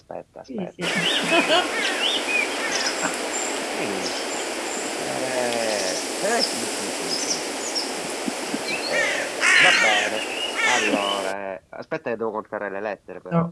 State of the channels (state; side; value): identical; both; correlation 1.00